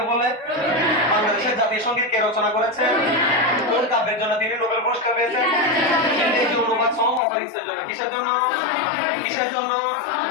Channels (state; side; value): drops out; right; at 7.2 s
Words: বলে? বাংলাদেশের জাতীয় সঙ্গীত কে রচনা করেছেন? কোন কাব্যের জন্য তিনি নোবেল পুরস্কার পেয়েছেন? ইংরেজি অনুবাদ সহ অপরিচিতের জন্য। কিসের জন্য? কিসের জন্য?